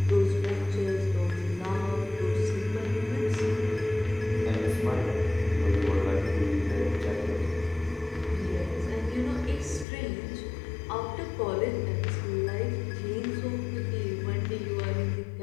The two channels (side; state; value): right; drops out; at 9.9 s